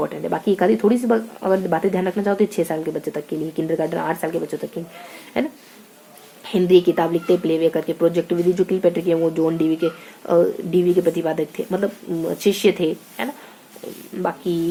है। बाकी एक आधी थोड़ी सी अगर बातें ध्यान रखना चाहो तो 6 साल के बच्चे तक के लिए, किंडरगार्टन 8 साल के बच्चों तक के, है ना। हिंदी किताब लिखते प्लेवे करके। प्रोजेक्ट विधि जो किलपेट्रिक है वो जॉन डीवी के प्रतिपादक थे, मतलब शिष्य थे, है ना।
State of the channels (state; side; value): identical; both; correlation 1.00